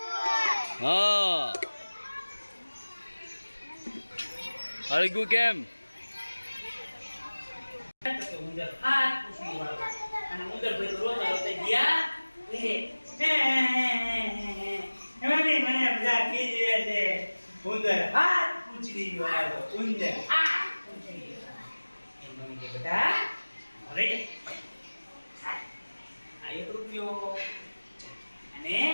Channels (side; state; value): both; inverted; correlation -1.00